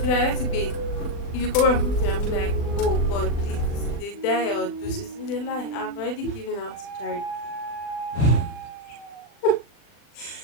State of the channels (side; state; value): right; late; 40 ms